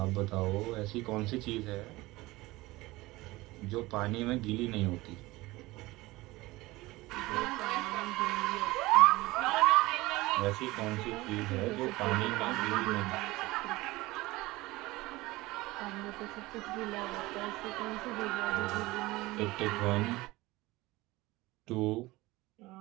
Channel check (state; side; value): quieter; left; 20.1 dB